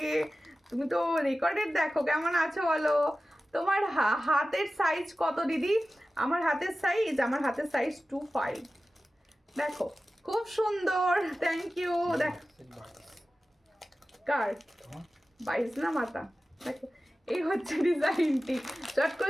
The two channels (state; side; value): normal; both; correlation 0.95